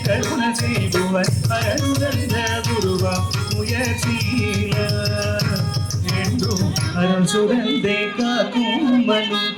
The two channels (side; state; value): both; identical; correlation 1.00